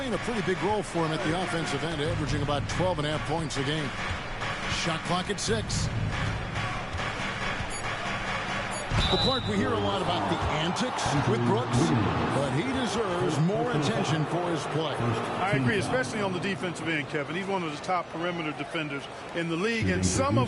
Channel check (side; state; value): both; identical; correlation 1.00